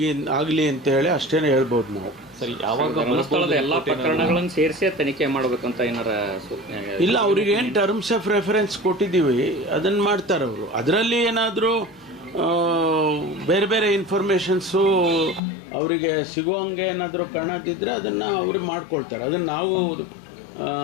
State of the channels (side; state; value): right; drops out; at 15.4 s